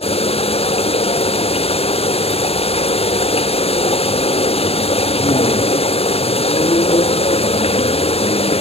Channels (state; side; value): late; right; 0.29 ms